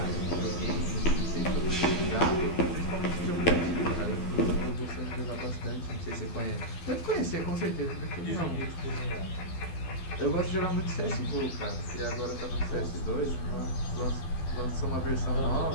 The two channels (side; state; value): right; late; 12 ms